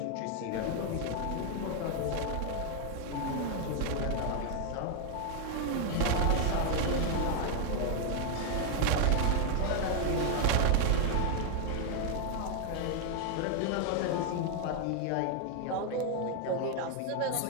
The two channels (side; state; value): both; different; correlation 0.00